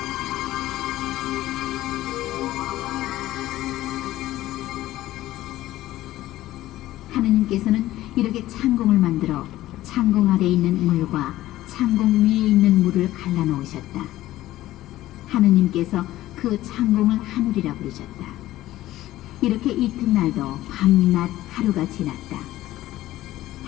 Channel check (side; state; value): right; quieter; 15.3 dB